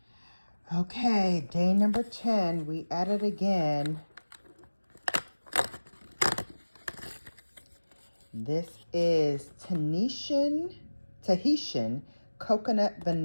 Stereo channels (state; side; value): inverted; both; correlation -1.00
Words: Okay, day number 10, we added again. This is Tahitian coconut